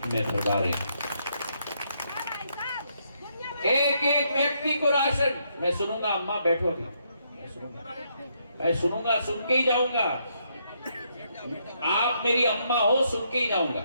में भरवा रहे हैं। एक एक व्यक्ति को राशन। मैं सुनूंगा, अम्मा बैठो अभी, मैं सुनूंगा, सुन के ही जाऊंगा। आप मेरी अम्मा हो, सुन के ही जाऊंगा।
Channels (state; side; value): inverted; both; correlation -0.75